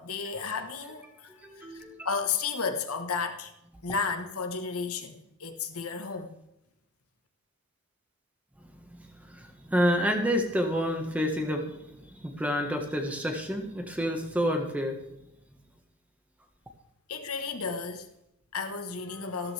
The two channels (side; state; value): both; normal; correlation 0.44